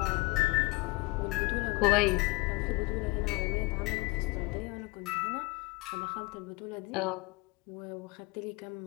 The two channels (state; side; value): quieter; right; 23.5 dB